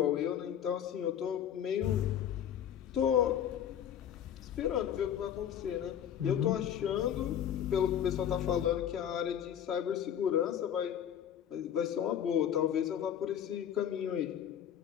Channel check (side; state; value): right; quieter; 9.6 dB